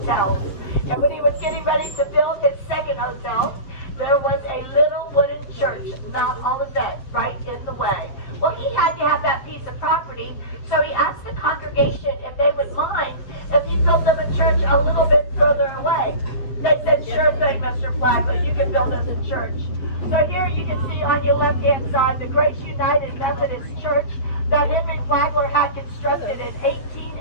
And when he was getting ready to build his second hotel, there was a little wooden church, Mount Olivet, right in the way. Well, he had to have that piece of property, so he asked the congregation if they would mind if he built them a church a little bit further away. They said, sure thing, Mr. Flagler, you can build us a church. So here you can see on your left-hand side the Grace United Methodist Church that Henry Flagler had constructed in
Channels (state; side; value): late; right; 7.9 ms